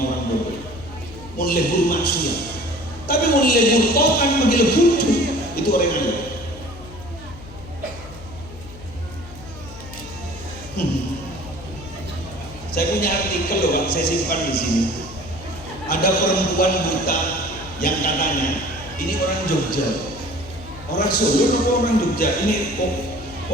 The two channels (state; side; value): noise; left; hum, 16 dB below the sound